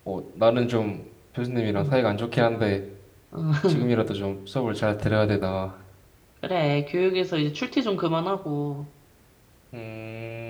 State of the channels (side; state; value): both; identical; correlation 1.00